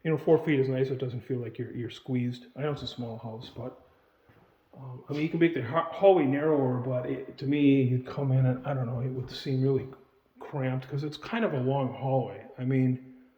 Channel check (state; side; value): identical; both; correlation 1.00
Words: feet is nice. It doesn't feel like you're squeezed. I know it's a small house, but you can make the hallway narrower. But to me, you'd come in and I don't know, it would seem really cramped because it's kind of a long hallway. I mean,